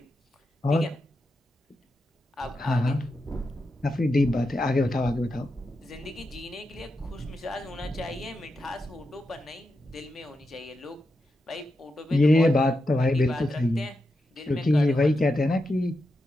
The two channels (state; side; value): normal; both; correlation 0.87